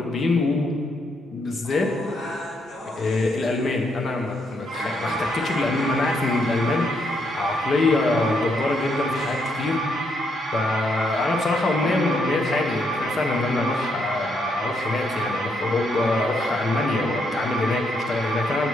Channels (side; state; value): both; normal; correlation 0.76